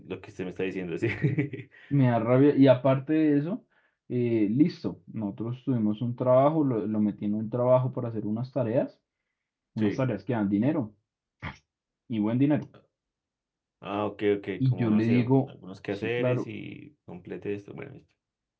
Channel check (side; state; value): both; identical; correlation 1.00